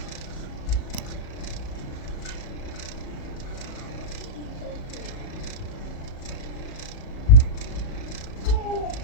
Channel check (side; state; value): right; late; 37 ms